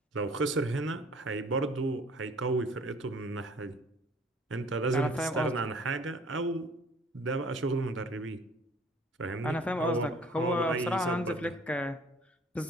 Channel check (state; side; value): normal; both; correlation 0.53